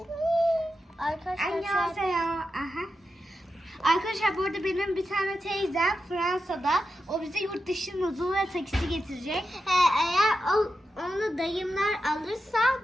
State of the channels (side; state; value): both; normal; correlation 0.89